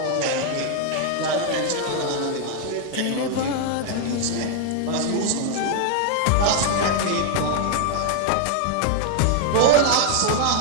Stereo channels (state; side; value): different; both; correlation 0.00